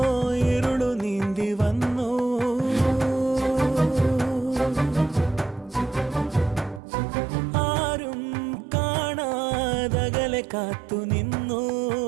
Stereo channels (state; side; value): drops out; left; at 6.8 s